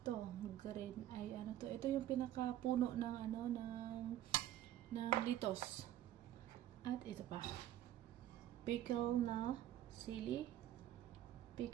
green ay ano to. Ito yung pinakapuno ng ng litos. At ito pa. Pickle na sili.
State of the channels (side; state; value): left; quieter; 12.5 dB